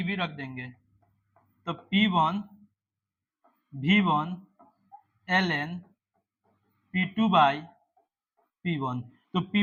रख देंगे। तो P1 V1 ln P2 by P1। तो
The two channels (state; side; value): identical; both; correlation 1.00